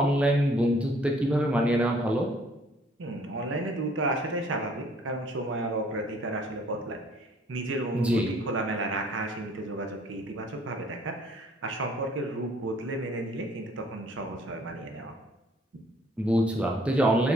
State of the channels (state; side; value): normal; both; correlation 0.59